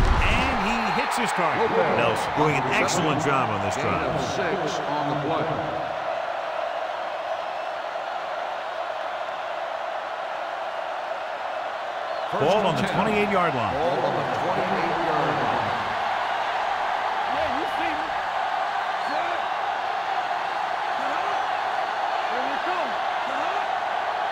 he hits his target. Nelson doing an excellent job on this drive. 6 on the play. Ball on the 28-yard line. Ball on the 28-yard line. Yeah, you see me. Here we come.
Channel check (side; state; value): both; identical; correlation 1.00